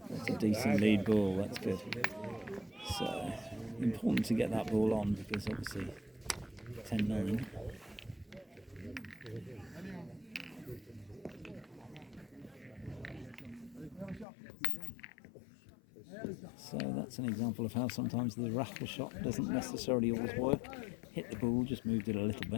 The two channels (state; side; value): drops out; right; at 14.2 s